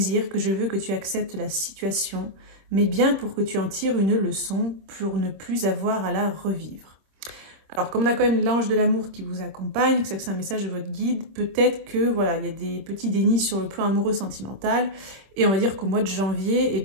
que je veux que tu acceptes la situation, mais bien pour que tu en tires une leçon, pour ne plus avoir à la revivre. Alors, comme on a quand même l'ange de l'amour qui vous accompagne, que c'est un message de votre guide, peut-être que voilà, il y a des petits dénis sur le plan amoureux sentimental, et on va dire qu'au mois de janvier, eh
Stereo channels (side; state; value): left; late; 26 ms